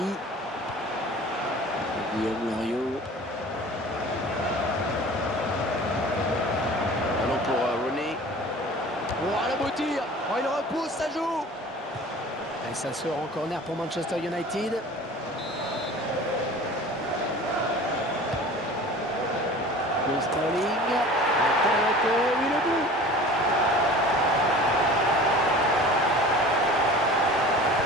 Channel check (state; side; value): normal; both; correlation 0.42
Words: Guillaume Loriot. Oh, il repousse, ça joue. Et ça sort en corner pour Manchester United. Sterling. Oui, le but.